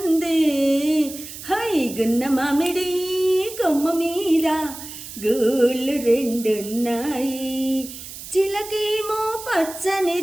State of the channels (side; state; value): right; noise; hiss, 12 dB below the sound